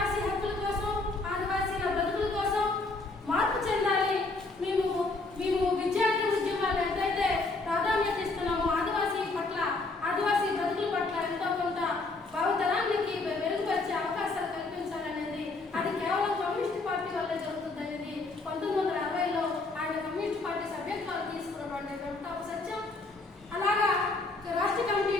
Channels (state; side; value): quieter; right; 3.4 dB